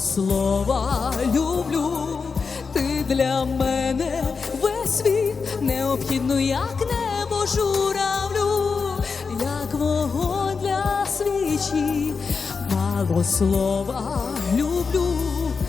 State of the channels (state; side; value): quieter; right; 5.1 dB